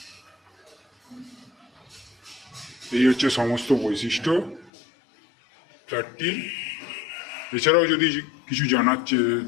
এই হচ্ছে সমস্ত বৈশিষ্ট্য ফ্ল্যাটটির। এছাড়াও যদি কিছু জানার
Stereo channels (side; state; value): right; drops out; at 4.7 s